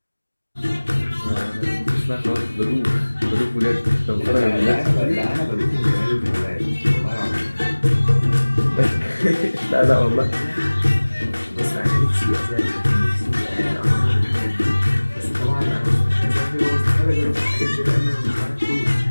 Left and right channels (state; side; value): inverted; both; correlation -1.00